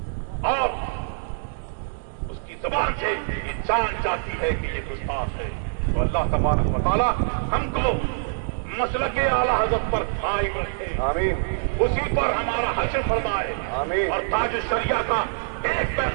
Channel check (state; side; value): silent; left; digital silence